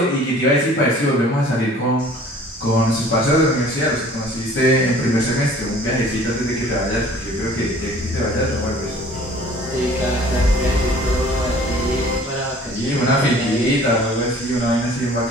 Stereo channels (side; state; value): both; normal; correlation 0.50